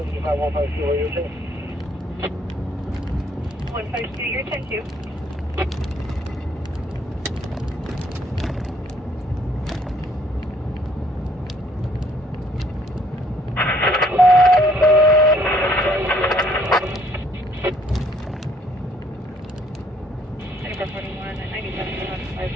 152, are you okay? 152, you're 10-2.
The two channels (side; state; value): both; normal; correlation 0.64